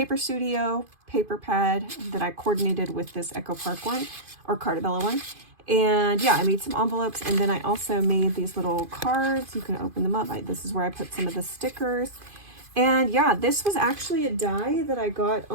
Studio paper pad that I coordinated with this Echo Park one, or Carta one. And yeah, I made some envelopes, and then I also made these little cards. You can open them up. This is where I put some of the stickers. And yeah, this was actually a die that I got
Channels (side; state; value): left; late; 2.5 ms